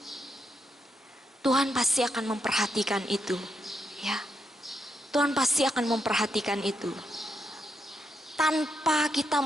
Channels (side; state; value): both; normal; correlation 0.81